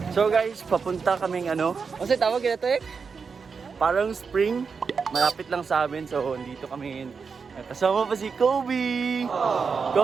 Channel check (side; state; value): left; quieter; 5.4 dB